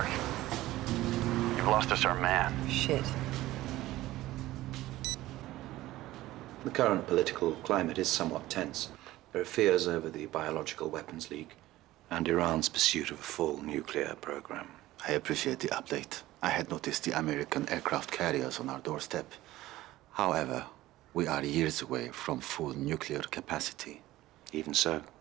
You've lost us our man. Shit. The current political climate is somewhat tense. There are fears over the Biological Weapons League and Iran's pursuit of a full nuclear program. I appreciate the update. I had noticed the American aircraft carriers on our doorstep. However, we are years away from full nuclear capacity. Even so,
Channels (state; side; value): quieter; left; 16.5 dB